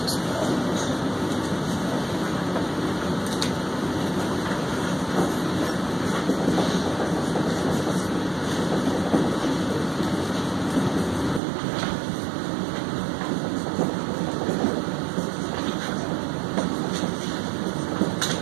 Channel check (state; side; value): drops out; left; at 11.4 s